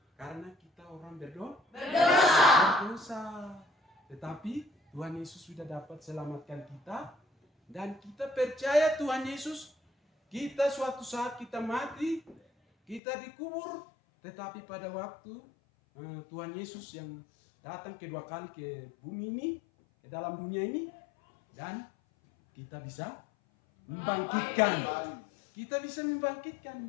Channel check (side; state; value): right; drops out; at 13.0 s